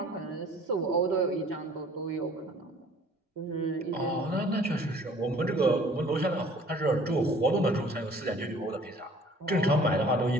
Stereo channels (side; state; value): both; normal; correlation 0.52